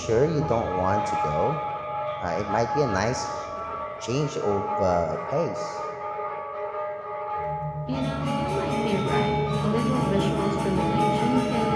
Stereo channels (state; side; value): identical; both; correlation 1.00